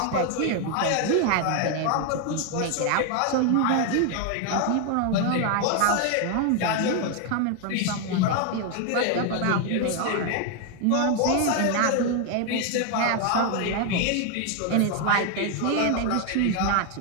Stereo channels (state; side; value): different; both; correlation 0.01